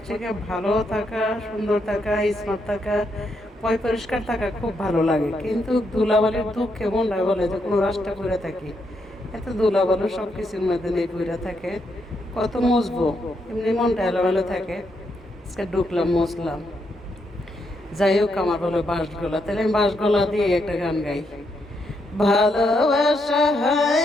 থেকে ভালো থাকা, সুন্দর থাকা, স্মার্ট থাকা, পরিষ্কার থাকা খুব ভালো লাগে, কিন্তু ধুলাবালির দুঃখ কেমন লাগে বলে যে কোনো রাস্তা করে থাকি, এত ধুলাবালু সব কিছুর মধ্যে নেই পড়ে থাকে, কত মুছবো, এমনি মনটা এলোমেলো থাকে। আজকে ঢুকলাম, মুছলাম। যাই হোক, আমার বলে বাঁশগোলা, তাহলে আমি বাঁশগোলা দিয়ে একটা গান গাই। ভালোবাসা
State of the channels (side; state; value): both; normal; correlation 0.79